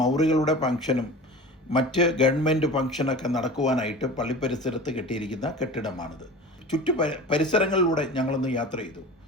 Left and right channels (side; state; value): both; normal; correlation 0.36